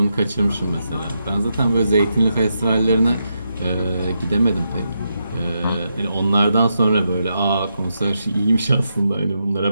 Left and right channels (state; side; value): inverted; both; correlation -0.84